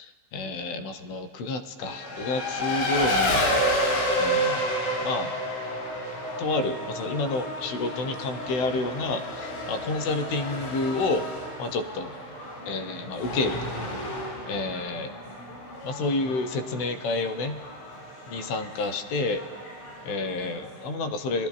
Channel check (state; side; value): late; right; 16 ms